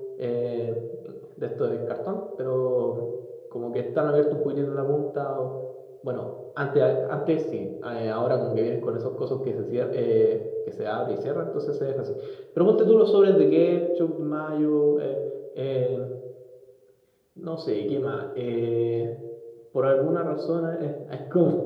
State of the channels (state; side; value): identical; both; correlation 1.00